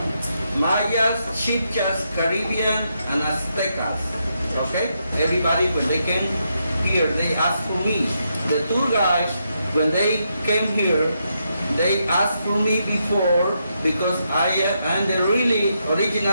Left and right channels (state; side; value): inverted; both; correlation -0.81